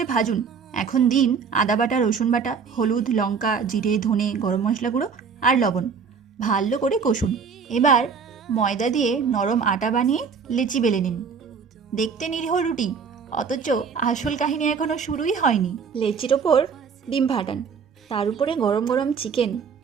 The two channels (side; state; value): left; quieter; 6.0 dB